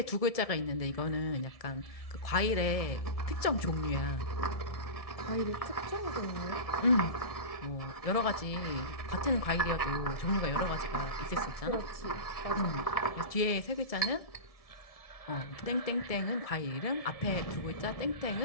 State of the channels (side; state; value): right; late; 1.7 ms